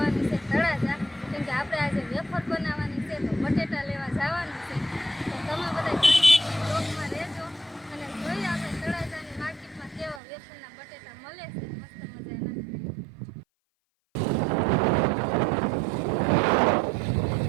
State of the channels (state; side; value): drops out; left; at 10.2 s